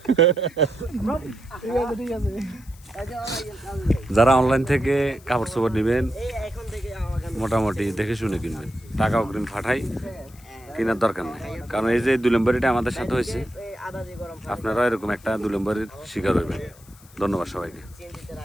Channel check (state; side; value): noise; left; hiss, 25 dB below the sound